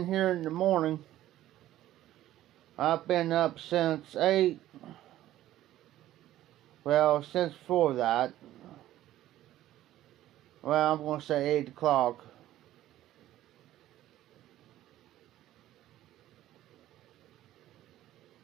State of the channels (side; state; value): left; quieter; 13.9 dB